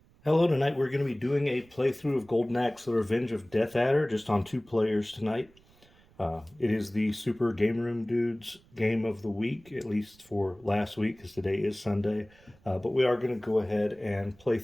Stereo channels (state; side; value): noise; right; rumble, 29 dB below the sound